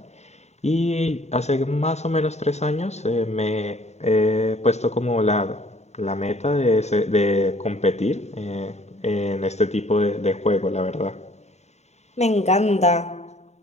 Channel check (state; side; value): late; right; 0.32 ms